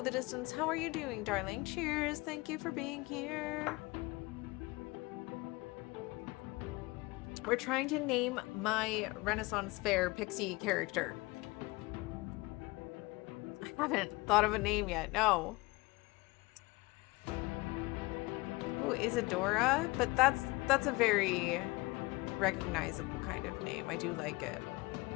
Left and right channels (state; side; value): quieter; right; 23.4 dB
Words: Distance. How are you doing, darling? Cheers. Thank you for being here. We're trying to name my Renaissance Fair pixie character. I haven't thought of a name yet. No. Ooh, Isadora? But that's a very recognizable kind of name. I do like it.